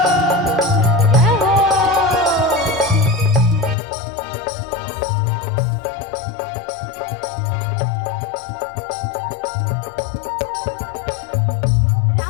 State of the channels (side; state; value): right; drops out; at 3.8 s